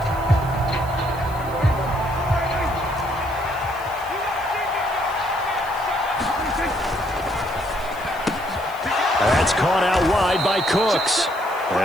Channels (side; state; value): right; noise; hiss, 20 dB below the sound